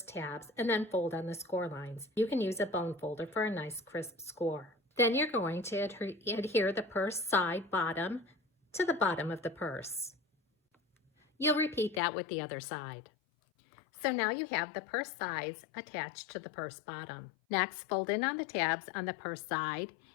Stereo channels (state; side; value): drops out; right; at 12.0 s